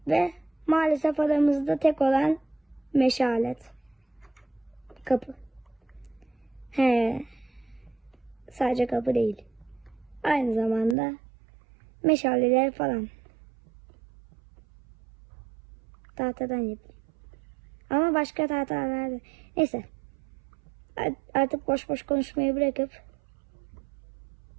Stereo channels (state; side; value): drops out; left; at 11.0 s